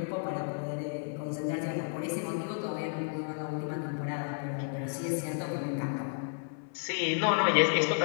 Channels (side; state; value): right; silent; 56 dB below the other